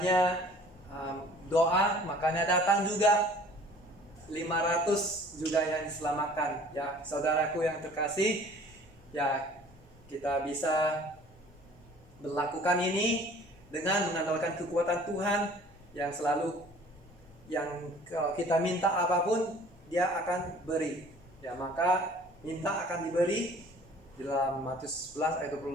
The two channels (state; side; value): normal; both; correlation 0.50